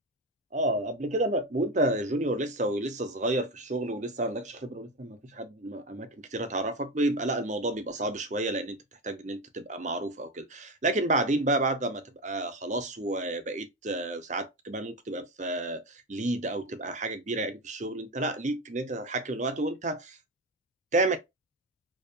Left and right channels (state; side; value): normal; both; correlation 0.19